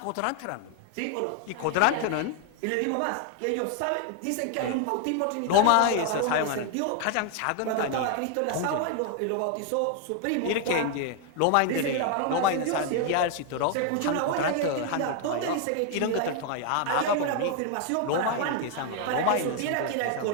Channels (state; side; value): different; both; correlation 0.00